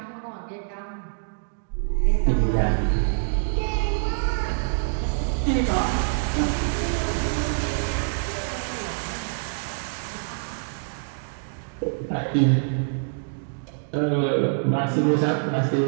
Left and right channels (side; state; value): left; silent; digital silence